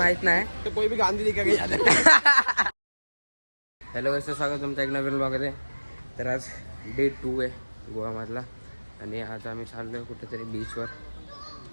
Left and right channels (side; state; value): both; inverted; correlation -1.00